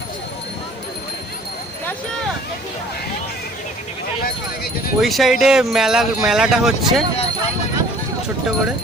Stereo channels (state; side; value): normal; both; correlation 0.52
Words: ওই সাইডে মেলাটা হচ্ছে ছোট্ট করে,